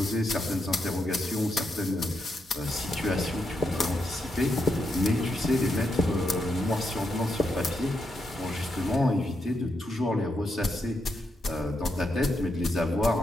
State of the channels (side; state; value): both; normal; correlation 0.82